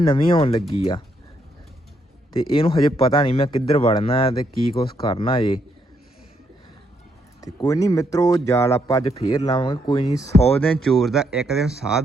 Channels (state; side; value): normal; both; correlation 0.75